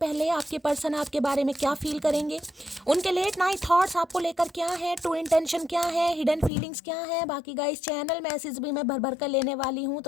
आपके पर्सन आपके बारे में क्या फील करेंगे, उनके लेट नाइट थॉट्स आपको लेकर क्या है, ट्रू इंटेंशन क्या है, हिडन फीलिंग्स क्या है। बाकी गाइस चैनल मैसेज भी मैं भर भर कर लेने वाली हूँ,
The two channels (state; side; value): drops out; right; at 6.5 s